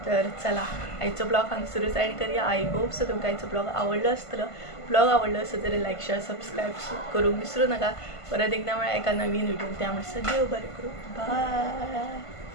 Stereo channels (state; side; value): late; right; 1.5 ms